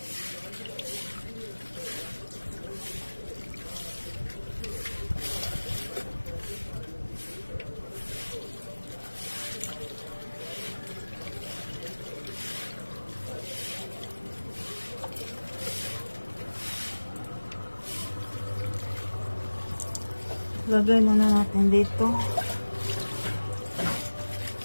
Lagay muna natin dito.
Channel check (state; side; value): inverted; both; correlation -1.00